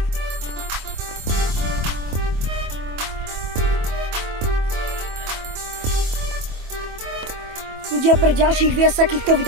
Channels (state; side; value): late; left; 24 ms